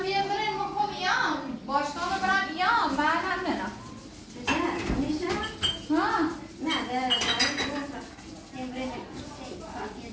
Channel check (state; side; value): identical; both; correlation 1.00